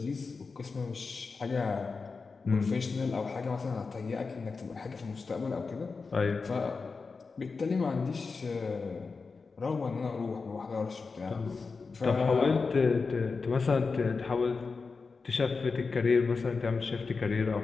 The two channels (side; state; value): right; quieter; 4.5 dB